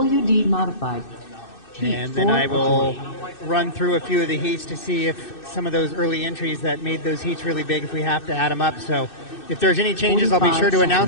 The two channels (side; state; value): right; late; 2.6 ms